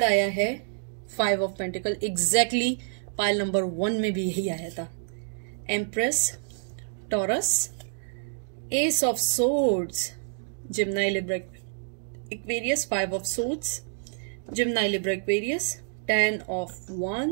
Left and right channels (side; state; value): left; silent; digital silence